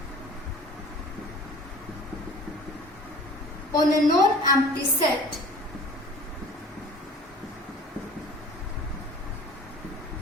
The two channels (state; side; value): normal; both; correlation 0.45